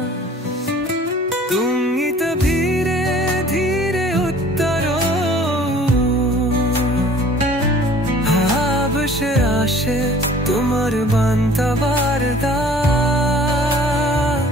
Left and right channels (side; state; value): both; normal; correlation 0.50